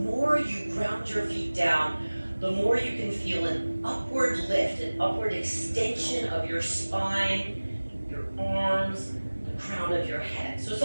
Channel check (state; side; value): inverted; both; correlation -1.00